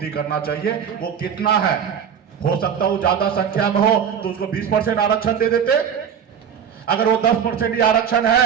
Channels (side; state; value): left; quieter; 7.9 dB